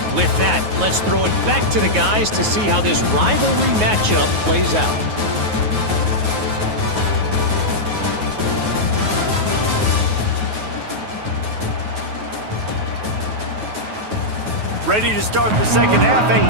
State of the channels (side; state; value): left; late; 9.4 ms